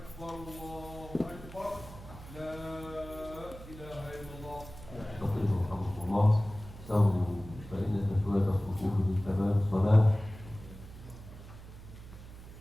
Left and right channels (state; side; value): noise; right; hum, 15 dB below the sound